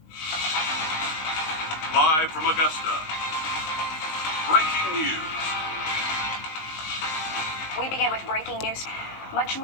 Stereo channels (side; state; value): right; late; 19 ms